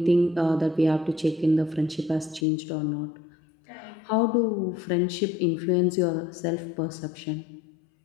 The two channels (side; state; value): right; drops out; at 2.5 s